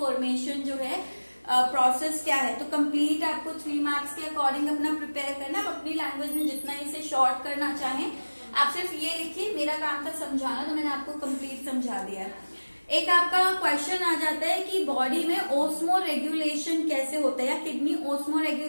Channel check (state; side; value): inverted; both; correlation -1.00